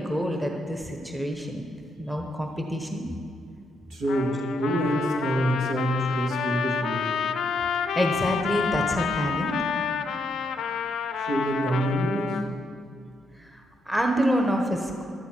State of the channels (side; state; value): both; normal; correlation 0.78